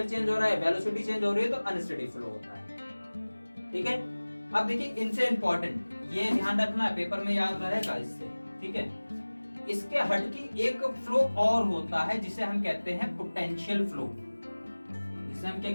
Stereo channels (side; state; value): both; inverted; correlation -1.00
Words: चेंज हो रहा है, वेलोसिटी चेंज हो रही है, तो अनस्टडी फ्लो होता है, ठीक है। अब देखिए इनसे इंपॉर्टेंट, ये ध्यान रखना है, पेपर में याद रहेगा इससे, ठीक है। इसके हटके एक फ्लो और होता है जिसे हम कहते हैं पोटेंशियल फ्लो, जिसे हम क्या